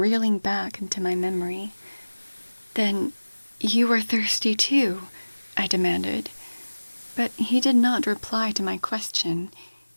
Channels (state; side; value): inverted; both; correlation -1.00